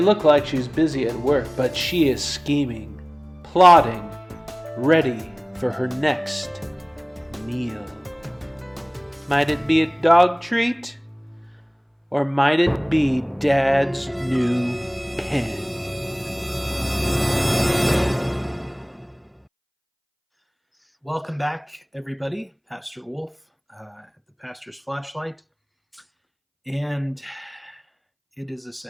look like she's busy at work, but she is scheming, plotting, ready for her next meal. Might it be a dog treat? Or might it be Dad's new pen? Welcome back, everybody. Pastor Wolf at the Pastor's Flashlight. And it is a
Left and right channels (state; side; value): identical; both; correlation 1.00